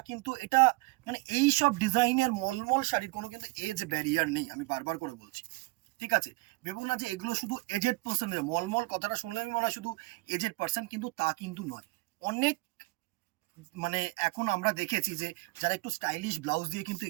কিন্তু এটা মানে এই সব ডিজাইনের মলমল শাড়ির কোনো কিন্তু এজ ব্যারিয়ার নেই, আমি বারবার করে বলছি, ঠিক আছে। ভেবো না যে এগুলো শুধু এজেড পার্সনের, মলমল কথাটা শুনলে আমি মনে হয় শুধু এজেড পার্সন, কিন্তু তা কিন্তু নয়। অনেক মানে এখন আমরা দেখেছি যে যারা একটু স্টাইলিশ ব্লাউজ দিয়ে কিন্তু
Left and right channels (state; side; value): quieter; left; 23.7 dB